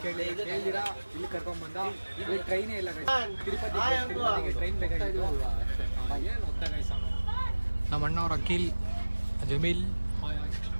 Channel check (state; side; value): inverted; both; correlation -1.00